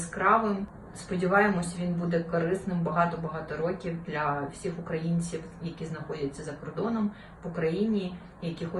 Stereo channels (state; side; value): identical; both; correlation 1.00